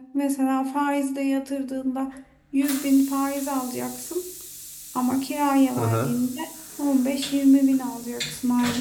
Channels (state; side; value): identical; both; correlation 1.00